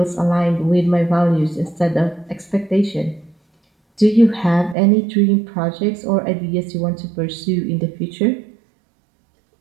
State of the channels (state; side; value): drops out; left; at 4.8 s